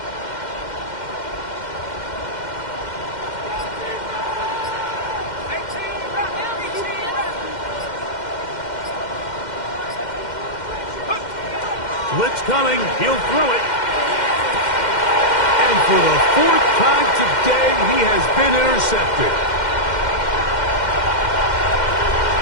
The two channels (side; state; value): right; late; 2.1 ms